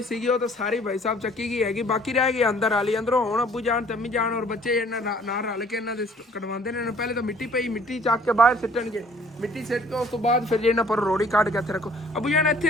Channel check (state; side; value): normal; both; correlation 0.56